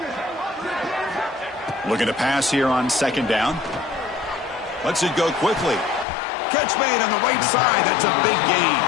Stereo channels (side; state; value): right; drops out; at 6.1 s